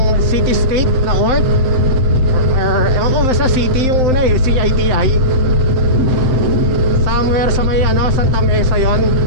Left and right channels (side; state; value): left; late; 7.7 ms